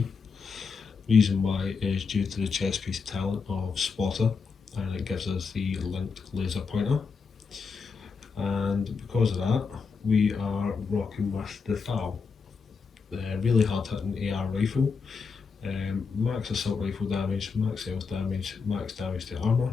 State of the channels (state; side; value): quieter; right; 5.3 dB